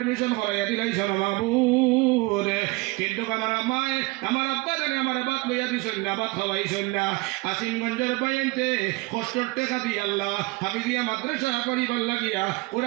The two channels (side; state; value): left; quieter; 23.6 dB